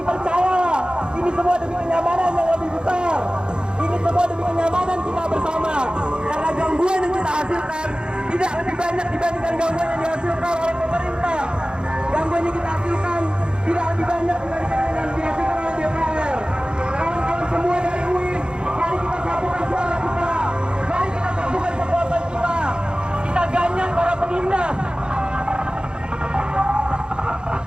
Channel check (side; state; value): left; late; 0.050 ms